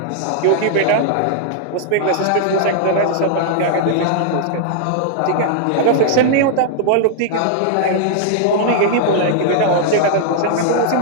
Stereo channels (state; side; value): different; both; correlation -0.01